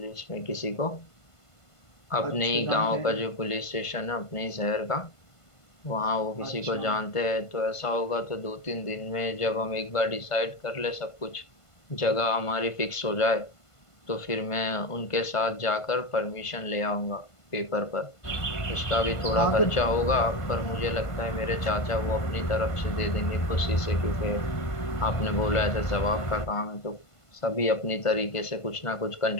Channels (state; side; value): late; right; 1.5 ms